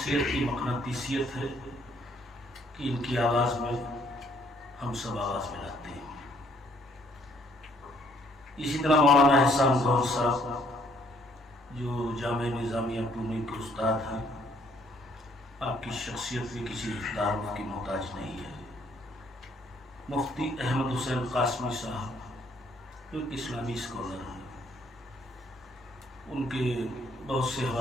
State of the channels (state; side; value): normal; both; correlation 0.65